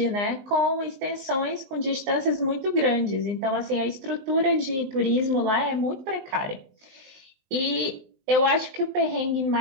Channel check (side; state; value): left; late; 19 ms